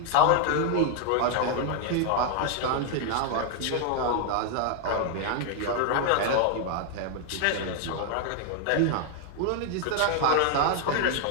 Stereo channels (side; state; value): both; different; correlation 0.00